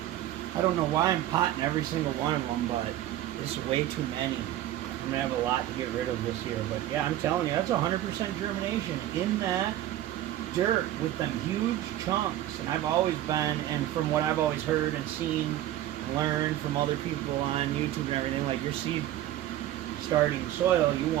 I don't know why I'm potting every single one of them, but it's way too many. I'm going to have a lot to get rid of this year. But yeah, I'm telling you, that's 100% germination in that dirt with them huge chunks. And I've always been, and from what I've always heard and seen and learned from other people on YouTube and everything, like your seed starting soil, you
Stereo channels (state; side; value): quieter; left; 13.3 dB